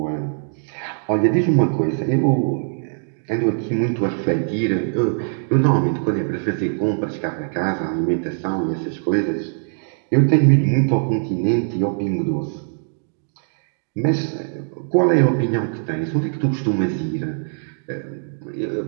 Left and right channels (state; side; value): silent; left; digital silence